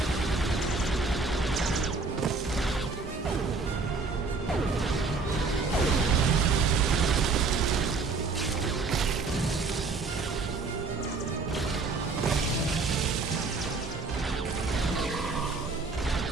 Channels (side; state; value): left; quieter; 4.1 dB